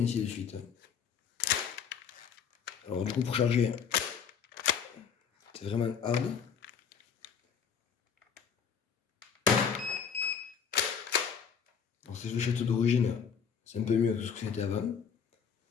ainsi de suite. Alors du coup pour charger, c'est vraiment hard. Alors ces fléchettes d'origine, c'est un peu mieux que ce que c'était avant.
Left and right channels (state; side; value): quieter; right; 6.9 dB